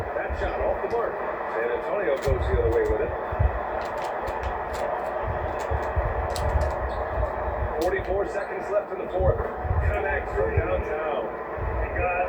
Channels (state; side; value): identical; both; correlation 1.00